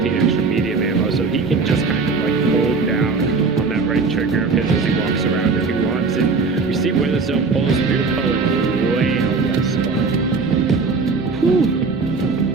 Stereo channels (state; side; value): quieter; left; 4.4 dB